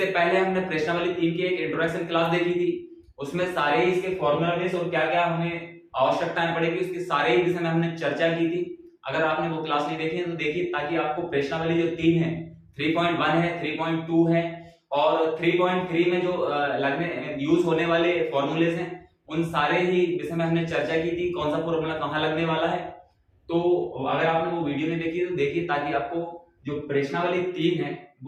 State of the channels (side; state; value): both; identical; correlation 1.00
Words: पहले हमने प्रश्नावली 3 की एक इंट्रोडक्शन क्लास देखी थी, उसमें सारे ही इसके फॉर्मूला बेस और क्या क्या हमें आवश्यकताएं पड़ेगी उसके सारे ही विषय में हमने चर्चा की थी। अगर आपने वो क्लास नहीं देखी है तो देखिए, ताकि आपको प्रश्नावली जो 3 है, 3.1 है, 3.2 है और 3.3 में जो लगने यूज होने वाले फॉर्मूलेस हैं, उन सारे ही विषय में हमने चर्चा की थी, कौन सा फॉर्मूला कहाँ लगने वाला है। तो अगर आपने वो वीडियो नहीं देखी तो देखिए, ताकि आपको जो प्रश्नावली 3 है